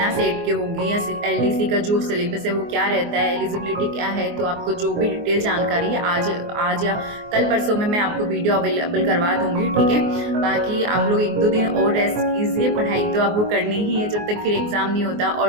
सेट के होगी या एलडीसी का जो सिलेबस है वो क्या रहता है, एलिजिबिलिटी क्या है। तो आपको जो भी डिटेल जानकारी है आज आज या कल परसों में मैं आपको वीडियो अवेलेबल करवा दूंगी, ठीक है। बाकी आप लोग एक दो दिन और रेस्ट कीजिए, पढ़ाई तो आपको करनी ही है जब तक फिर एग्ज़ाम नहीं होता।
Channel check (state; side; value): late; left; 24 ms